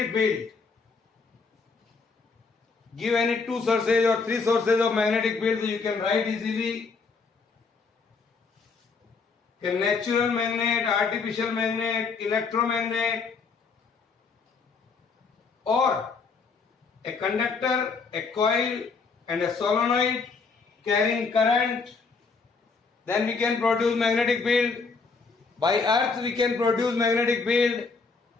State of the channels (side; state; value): right; quieter; 4.7 dB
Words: field. Give any 2 sources or 3 sources of magnetic field, so you can write easily. A natural magnet, artificial magnet, electromagnet, or a conductor, a coil, and a solenoid carrying current. Then we can produce magnetic field. By earth we can produce magnetic field.